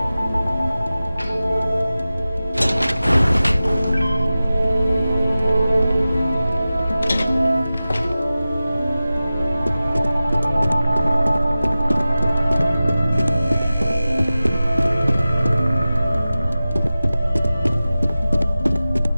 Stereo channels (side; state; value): both; inverted; correlation -0.96